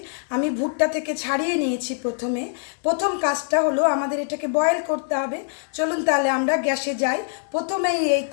आमी भुट्टा थेके छाड़िए नियेछि। प्रथम काजटा हलो आमादेर एटाके बয়েল करते हबे। चलुन ताहले आमरा ग्यासे जाई, प्रथमेई एई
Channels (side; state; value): right; silent; 63 dB below the other